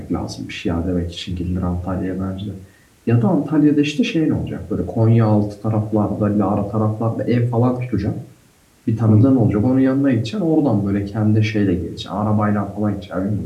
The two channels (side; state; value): both; identical; correlation 1.00